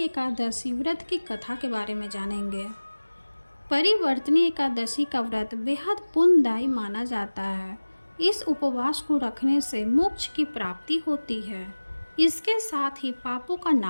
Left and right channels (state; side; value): inverted; both; correlation -1.00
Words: व्रत की कथा के बारे में जानेंगे। परिवर्तनी एकादशी का व्रत बेहद पुण्यदायी माना जाता है। इस उपवास को रखने से मोक्ष की प्राप्ति होती है। इसके साथ ही पापों का